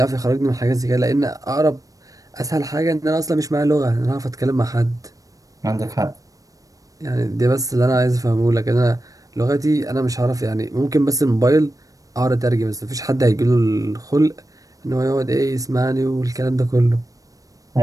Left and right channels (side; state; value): left; late; 0.17 ms